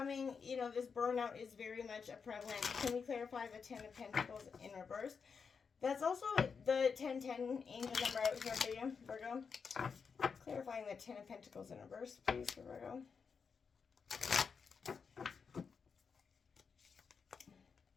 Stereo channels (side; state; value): right; quieter; 5.8 dB